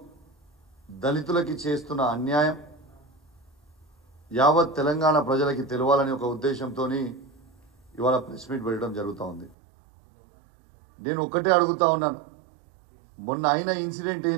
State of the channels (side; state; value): left; drops out; at 9.6 s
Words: దళితులకి చేస్తున్న అన్యాయం యావత్ తెలంగాణ ప్రజలకి తెలవాలని ఒక ఉద్దేశంతోని ఇవాళ ప్రెస్ మీట్ పెట్టడం జరుగుతూ ఉంది. నేను ఒక్కటే అడుగుతా ఉన్నాను, మొన్న అయిన ఇన్సిడెంట్